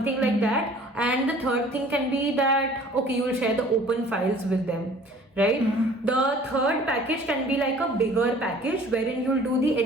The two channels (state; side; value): normal; both; correlation 0.50